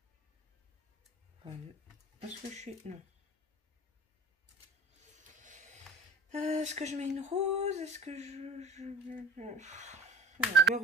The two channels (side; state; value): both; normal; correlation 0.40